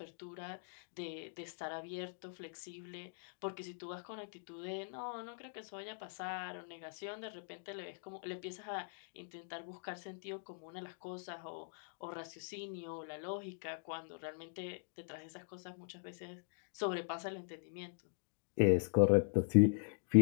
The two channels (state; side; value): silent; right; digital silence